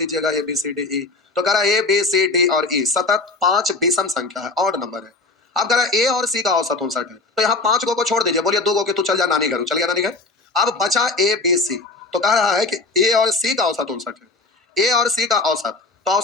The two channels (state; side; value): quieter; right; 3.5 dB